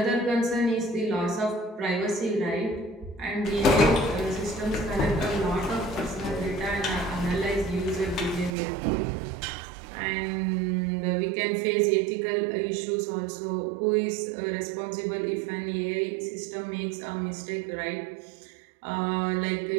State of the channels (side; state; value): left; drops out; at 8.6 s